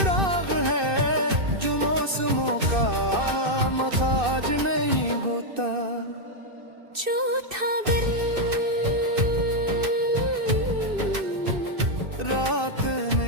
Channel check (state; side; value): late; left; 2.6 ms